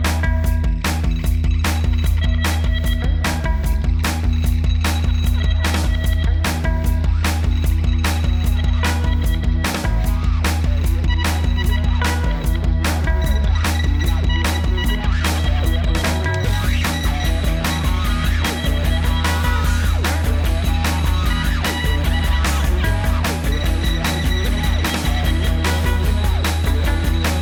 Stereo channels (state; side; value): identical; both; correlation 1.00